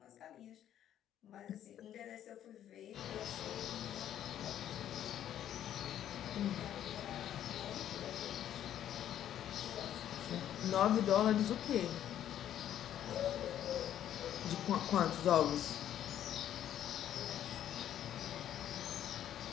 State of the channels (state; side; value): quieter; right; 10.9 dB